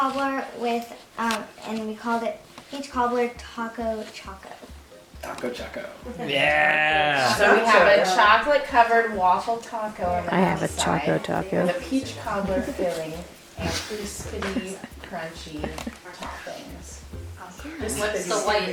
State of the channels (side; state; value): both; identical; correlation 1.00